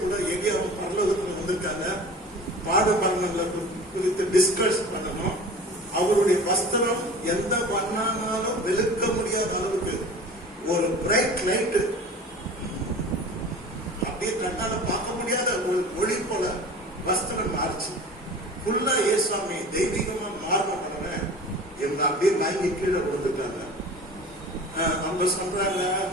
கூட எங்கேயும் பரலோகத்துல வந்திருக்காங்க, பாடு மரணங்களை குறித்து டிஸ்கஸ் பண்ணணும். அவருடைய வஸ்திரம் எந்த வண்ணானாலும் வெளுக்க முடியாத அளவுக்கு ஒரு பிரைட் லைட், அப்படியே கண்ணால பார்க்க முடியாத ஒரு ஒளி போல வஸ்திரம் மாறிச்சு. ஃபுல்லா ஏசாமி தெய்வீகமா மாறின இவங்க அப்படியே வாங்கி கீழே கொடுத்துட்டாங்க. அவங்க சொல்றாங்க,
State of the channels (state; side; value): normal; both; correlation 0.39